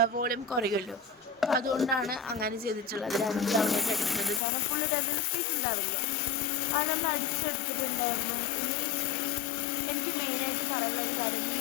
വോളിയം കുറയുമല്ലോ. അപ്പോൾ അതുകൊണ്ടാണ് അങ്ങനെ ചെയ്തിട്ടുള്ളത്. രണ്ട് തവണയായിട്ട് അടിക്കുന്നത്. കാരണം ഫുള്ളിട്ട് എന്തെങ്കിലും സ്പേസ് ഉണ്ടാവില്ല. അത് നമ്മൾ അടിച്ചെടുത്തിട്ടുണ്ടായിരുന്നു. ഇനി എനിക്ക് മെയിനായിട്ട് പറയാനുള്ളൊരു കാര്യം,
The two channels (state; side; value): drops out; right; at 4.4 s